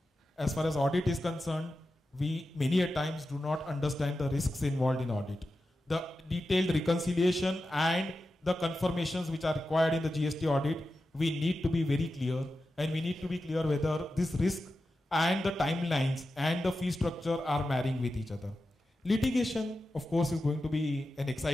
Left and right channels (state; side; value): normal; both; correlation 0.91